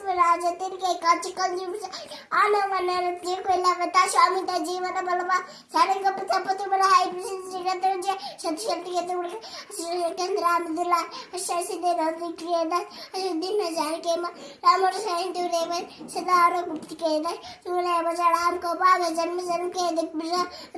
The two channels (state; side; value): identical; both; correlation 1.00